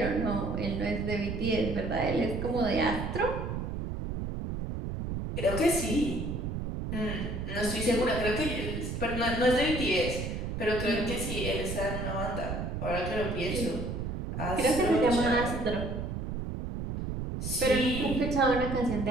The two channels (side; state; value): right; noise; rumble, 4 dB below the sound